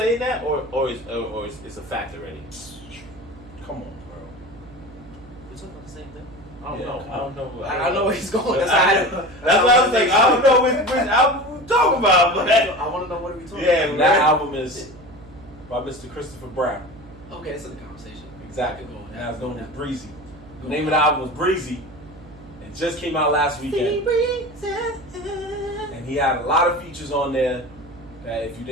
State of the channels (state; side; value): noise; right; hum, 21 dB below the sound